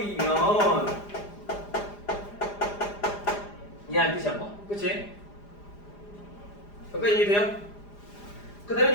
이해한 뜻이야 뭐 그치? 여기까지 이해돼요? 그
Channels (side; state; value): right; late; 4.9 ms